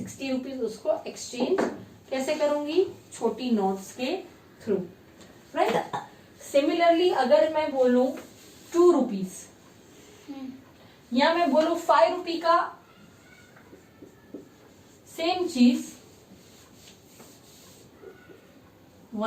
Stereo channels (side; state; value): both; identical; correlation 1.00